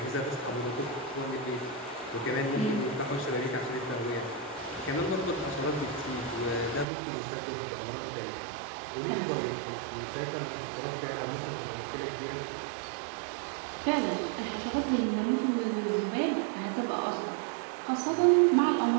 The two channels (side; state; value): left; drops out; at 6.9 s